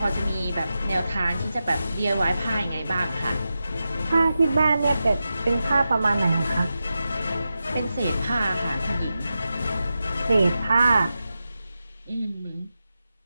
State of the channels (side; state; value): both; inverted; correlation -0.91